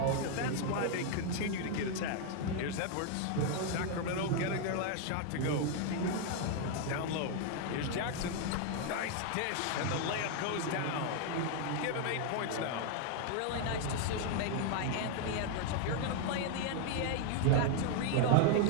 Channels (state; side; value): different; both; correlation 0.00